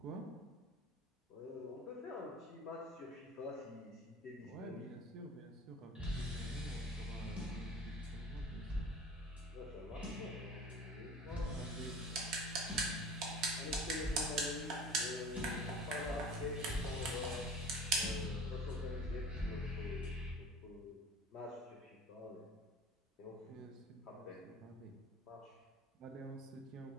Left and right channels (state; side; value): normal; both; correlation 0.41